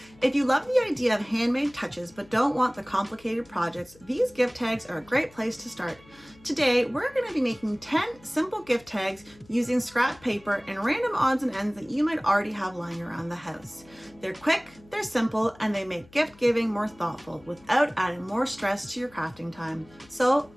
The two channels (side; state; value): left; noise; hum, 26 dB below the sound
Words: If you love the idea of handmade touches but don't want the complicated projects, these gift tags are a great place to start. Today, we're going to be making 10 simple gift tags using scrap paper and random odds and ends that you might already have lying around the house. They're quick, they're simple, and they make gift giving more thoughtful without adding more stress to your crafting time. So